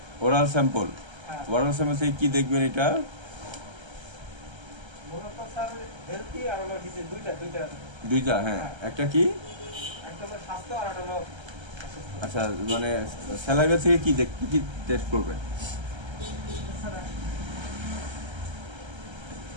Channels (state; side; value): late; left; 1.3 ms